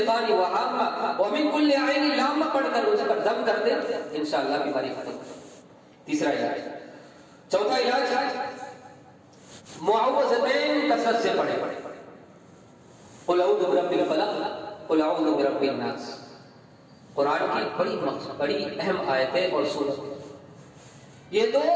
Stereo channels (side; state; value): both; identical; correlation 1.00